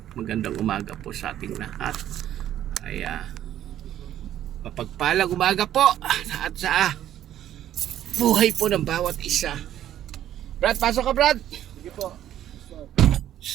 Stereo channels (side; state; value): left; quieter; 11.7 dB